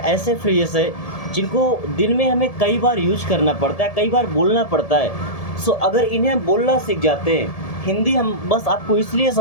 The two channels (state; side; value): late; right; 1.7 ms